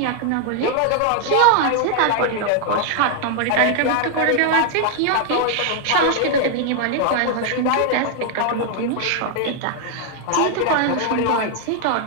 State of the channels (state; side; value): different; both; correlation 0.00